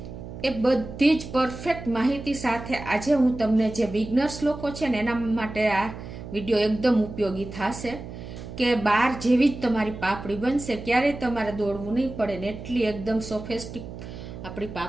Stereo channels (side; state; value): right; noise; hum, 11 dB below the sound